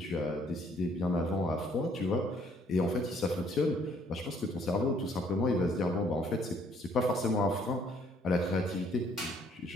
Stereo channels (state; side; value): normal; both; correlation 0.64